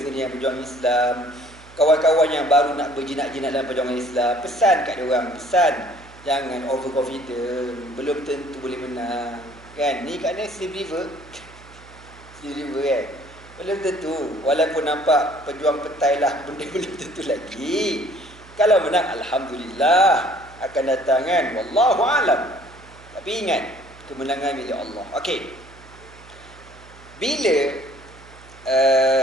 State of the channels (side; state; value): right; noise; hum, 22 dB below the sound